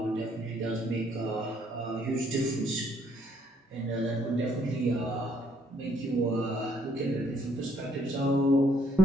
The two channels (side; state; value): both; normal; correlation 0.67